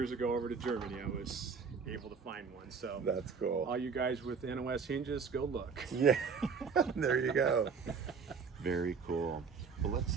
ago over to Germany, I was able to find one. So that's cool. All you guys with NOS hinges, go look. Yeah, there you go. Very cool. Well, let's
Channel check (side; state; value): left; quieter; 5.6 dB